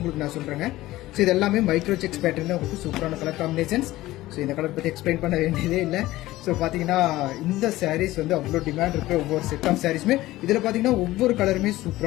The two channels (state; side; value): quieter; right; 16.9 dB